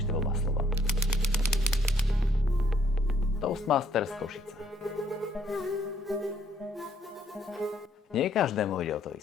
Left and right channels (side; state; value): both; normal; correlation 0.66